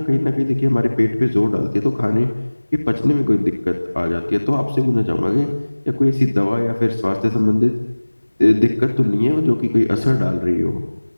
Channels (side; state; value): both; inverted; correlation -1.00